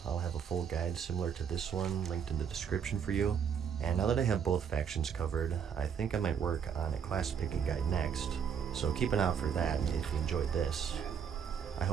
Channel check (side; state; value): left; quieter; 7.5 dB